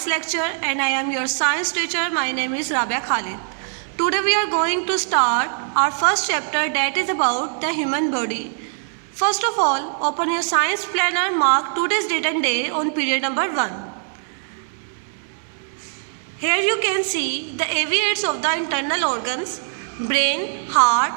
lecture and I am your science teacher. My name is Rabia Khalid. Today we are going to start our first chapter that is about the human body. First of all, open your science planner, mark today's date and day on period number 1. Here you can see the aviates of the internal organs, brain, heart,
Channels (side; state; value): left; silent; digital silence